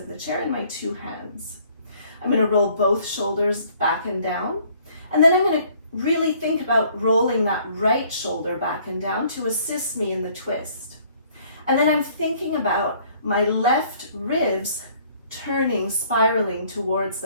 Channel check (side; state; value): both; inverted; correlation -0.59